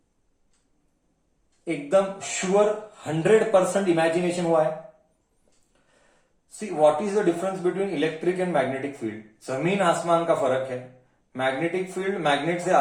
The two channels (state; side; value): identical; both; correlation 1.00